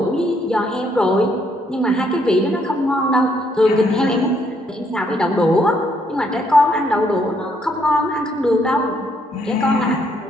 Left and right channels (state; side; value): normal; both; correlation 0.71